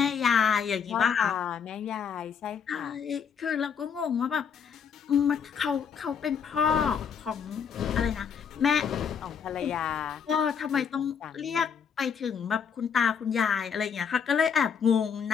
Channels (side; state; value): right; quieter; 7.0 dB